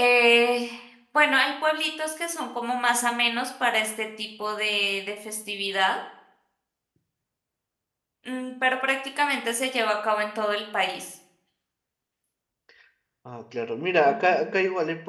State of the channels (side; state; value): both; identical; correlation 1.00